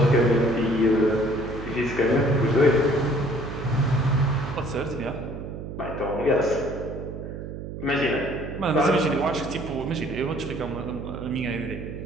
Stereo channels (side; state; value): right; noise; hum, 8 dB below the sound